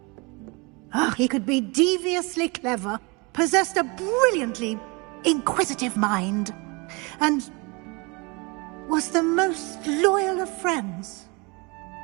He could be deviously clever, possessed a brilliantly inquisitive mind, and was the most loyal of friends.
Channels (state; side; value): quieter; left; 28.2 dB